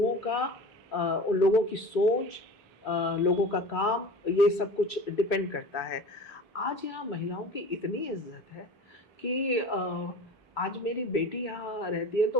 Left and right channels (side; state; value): both; normal; correlation 0.37